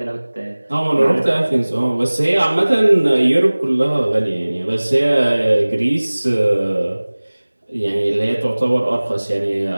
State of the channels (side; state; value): both; inverted; correlation -1.00